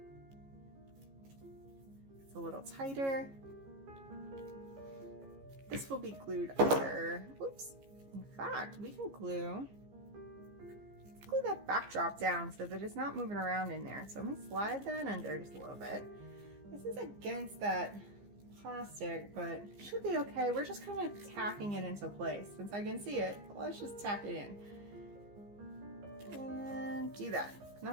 it's a little tighter. This will be glued under. Oops. In fact, we can glue that backdrop down so that it's not moving around in there. So let me slide that under just a little bit. This is against that plastic, but it should be okay. We're just kind of tacking it into place. Since I can see it, let's just tack it in. And do that. And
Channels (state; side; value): late; left; 15 ms